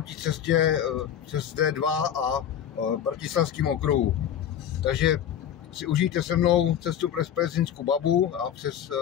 cestě přes D2 a Bratislavským okruhu. Takže si užijte se mnou cestu přes Pezinskou Babu a přes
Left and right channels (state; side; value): quieter; right; 9.7 dB